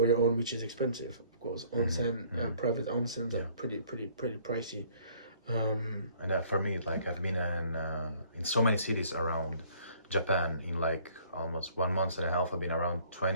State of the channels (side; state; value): both; inverted; correlation -0.58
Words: your own, which is expensive, of course. Onsen, private onsens are pretty pricey. And for me, like, I've been in so many cities around Japan in like almost 1 month and a half. I've been around